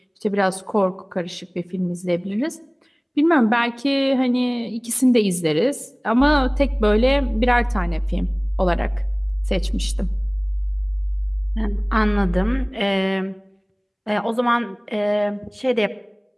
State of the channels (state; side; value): identical; both; correlation 1.00